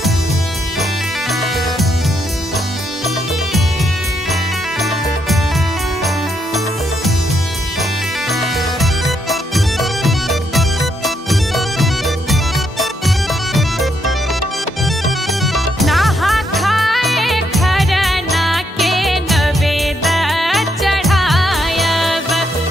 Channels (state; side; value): normal; both; correlation 0.77